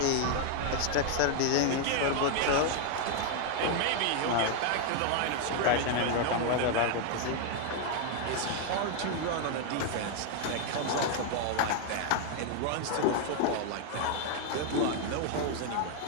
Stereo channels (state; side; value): different; both; correlation 0.00